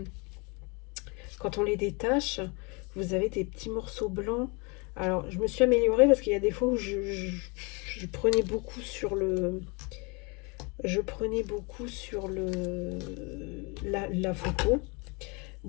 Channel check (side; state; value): right; quieter; 30.3 dB